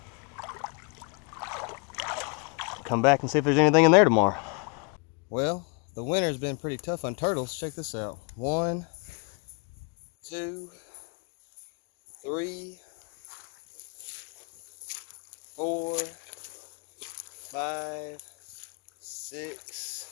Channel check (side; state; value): right; quieter; 36.1 dB